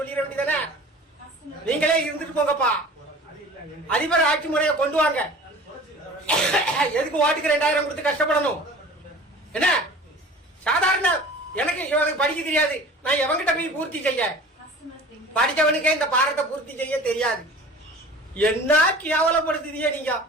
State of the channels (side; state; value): both; normal; correlation 0.42